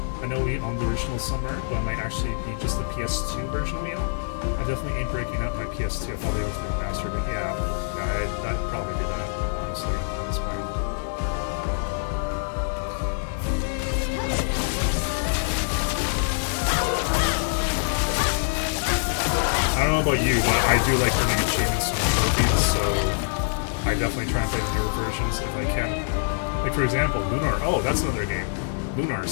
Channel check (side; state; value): right; silent; 62 dB below the other